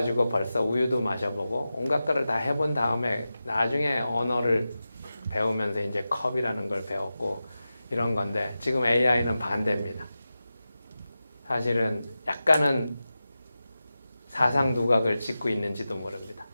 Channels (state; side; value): inverted; both; correlation -0.94